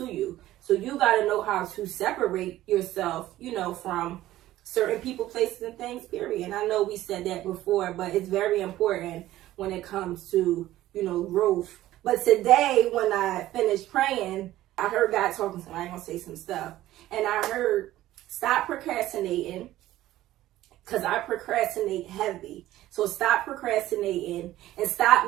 you. So you got to know how to separate yourself, from certain people, places, and things, period. And I know we said that before, but it's very important when it comes to, growth. But today, when I finished praying, I heard God talking to me. I'm going to say some stuff. And I heard, stop procrastinating, because I procrastinate heavy. So stop procrastinating and stop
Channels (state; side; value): quieter; left; 14.9 dB